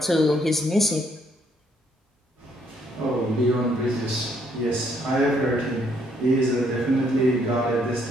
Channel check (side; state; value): both; normal; correlation 0.69